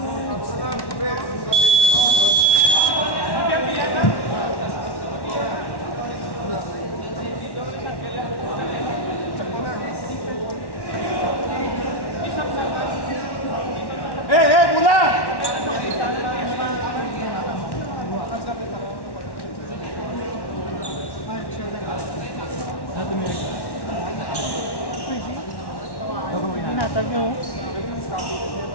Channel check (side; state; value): right; late; 1.1 ms